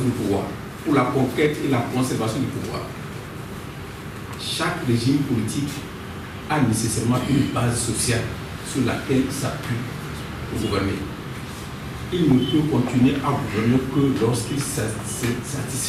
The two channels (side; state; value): both; identical; correlation 1.00